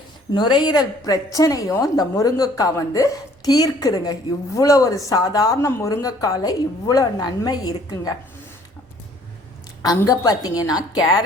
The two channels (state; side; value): normal; both; correlation 0.57